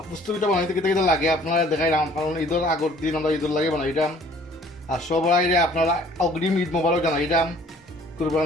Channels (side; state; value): both; normal; correlation 0.55